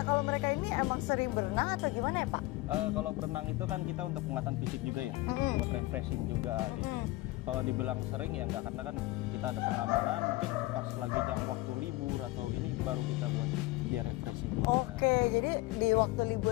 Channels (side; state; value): right; quieter; 19.8 dB